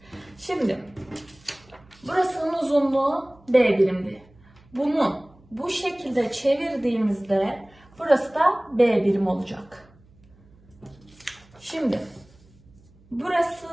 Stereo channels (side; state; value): right; noise; hum, 28 dB below the sound